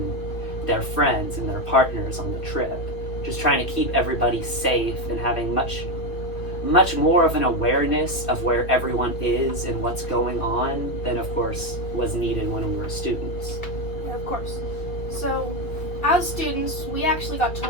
their friends and their partners on the trip. Just trying to keep everybody safe and having much more of an awareness of where everyone is and what's going on than, of course, was needed when we were students. Yeah, of course. So, as students, we actually got to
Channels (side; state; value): right; late; 2.4 ms